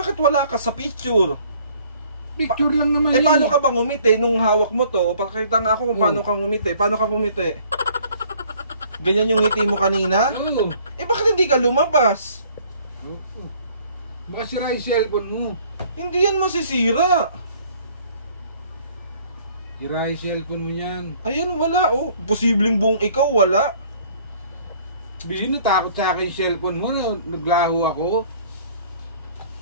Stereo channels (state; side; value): inverted; both; correlation -0.57